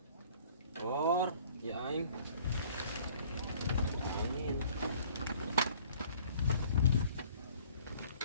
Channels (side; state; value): both; inverted; correlation -0.54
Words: Or, ya aing. Angin.